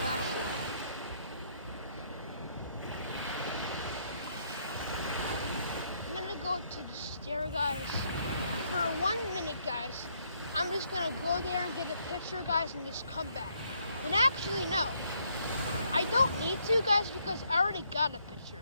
I'm gonna go to the stair, guys. For 1 minute, guys. I'm just gonna go there and get a picture, guys, and just come back. And actually, no. I don't need to, guys, because I already got a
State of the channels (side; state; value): both; inverted; correlation -0.71